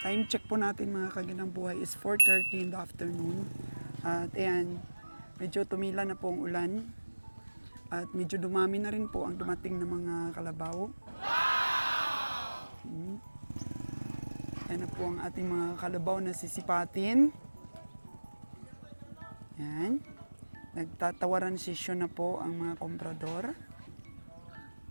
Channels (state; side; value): inverted; both; correlation -1.00